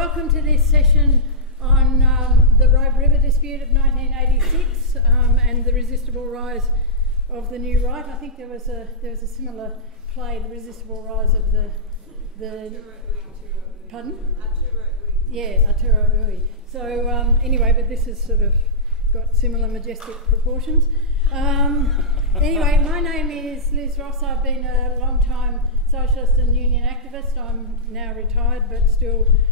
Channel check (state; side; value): normal; both; correlation -0.15